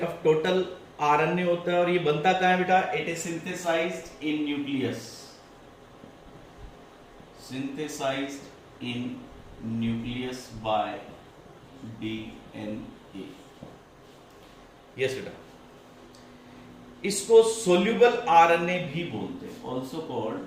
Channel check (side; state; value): both; identical; correlation 1.00